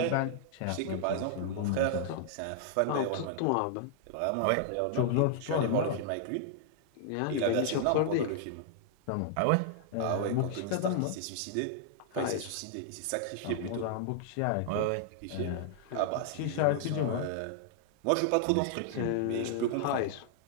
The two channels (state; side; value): different; both; correlation -0.01